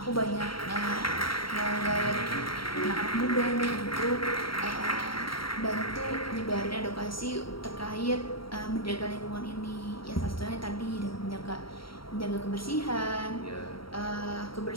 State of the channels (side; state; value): right; late; 0.74 ms